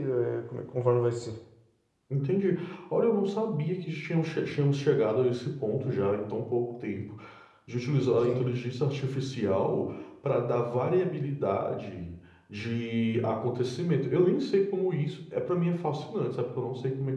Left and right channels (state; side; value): identical; both; correlation 1.00